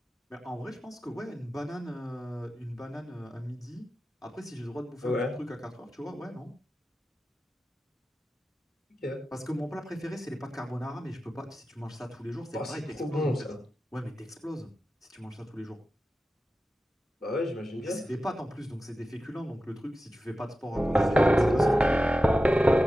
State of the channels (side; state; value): both; normal; correlation 0.93